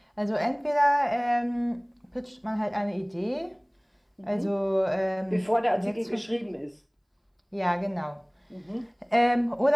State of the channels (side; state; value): both; identical; correlation 1.00